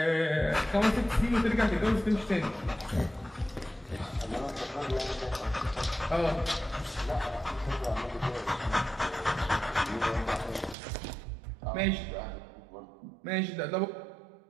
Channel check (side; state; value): left; drops out; at 10.8 s